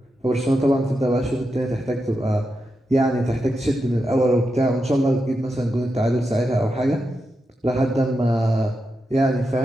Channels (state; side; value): normal; both; correlation 0.87